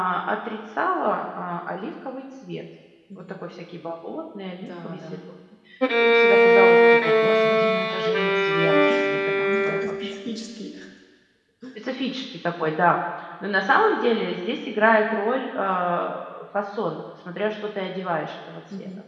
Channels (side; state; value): both; identical; correlation 1.00